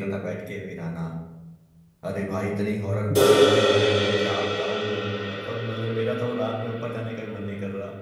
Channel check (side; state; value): both; identical; correlation 1.00